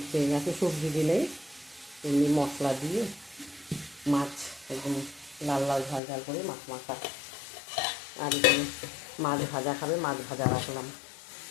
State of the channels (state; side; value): drops out; right; at 6.0 s